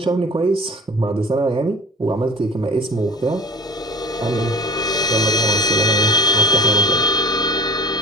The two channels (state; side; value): normal; both; correlation 0.40